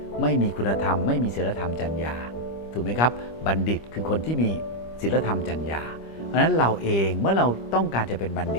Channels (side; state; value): right; late; 25 ms